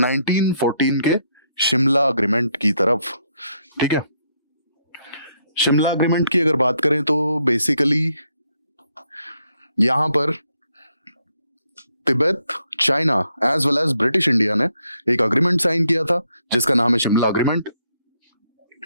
के शिमला अग्रीमेंट की तरफ। ठीक है, शिमला अग्रीमेंट की अगर बात करें तो बेसिकली यहां पर Tibet, China as well as British India ने एक अग्रीमेंट साइन किया था जिसका नाम है शिमला अग्रीमेंट।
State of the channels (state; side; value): inverted; both; correlation -0.75